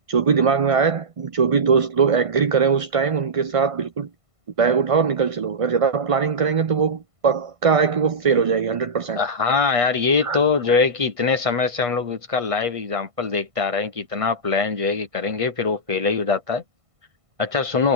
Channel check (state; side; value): late; left; 1.5 ms